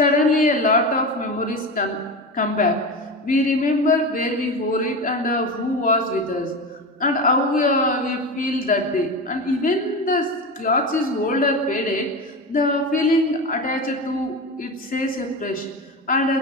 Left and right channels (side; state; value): both; normal; correlation 0.23